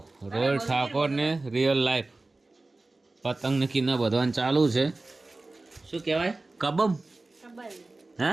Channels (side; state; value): left; quieter; 3.2 dB